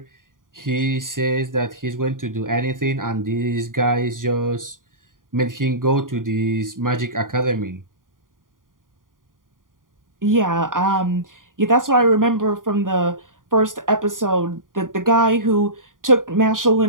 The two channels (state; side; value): late; left; 0.90 ms